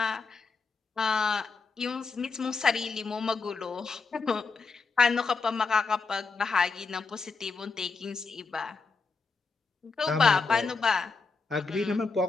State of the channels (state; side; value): quieter; right; 4.4 dB